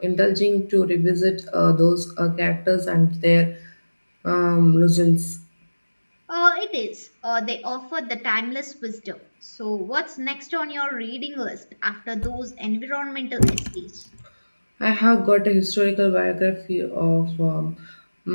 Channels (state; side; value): inverted; both; correlation -1.00